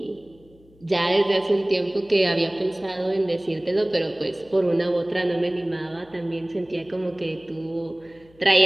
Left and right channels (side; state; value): left; noise; hum, 28 dB below the sound